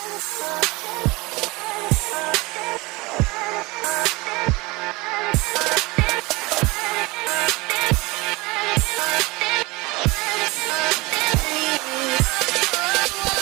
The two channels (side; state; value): left; quieter; 23.7 dB